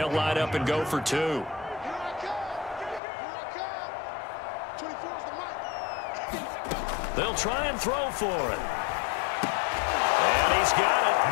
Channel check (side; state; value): right; drops out; at 3.0 s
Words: line up and go for 2. They'll try and throw for it. And he's got